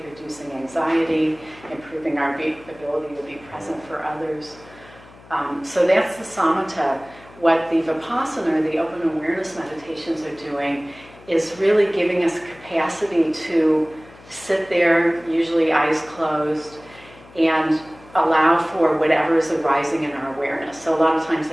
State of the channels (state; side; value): noise; left; hum, 23 dB below the sound